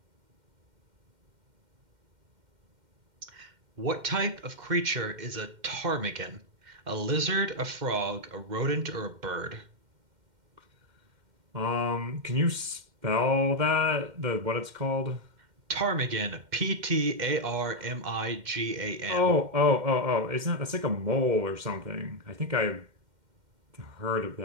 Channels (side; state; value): left; late; 2.1 ms